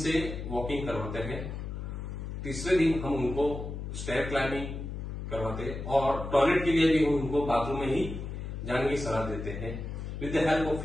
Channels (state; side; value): noise; left; hum, 6 dB below the sound